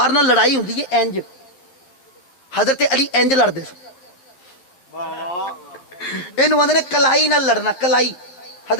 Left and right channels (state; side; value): late; right; 11 ms